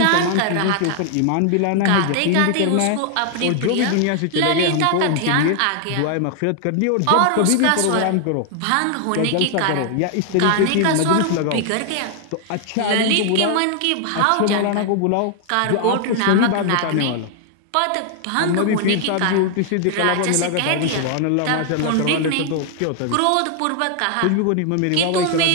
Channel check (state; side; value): different; both; correlation 0.00